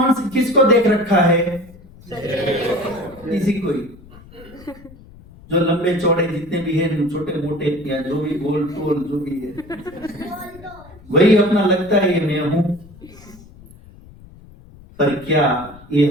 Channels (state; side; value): noise; left; rumble, 21 dB below the sound